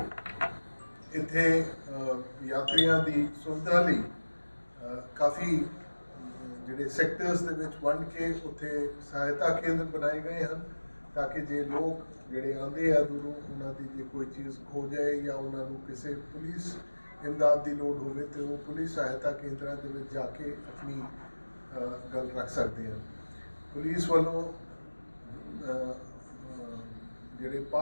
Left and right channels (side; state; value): both; inverted; correlation -1.00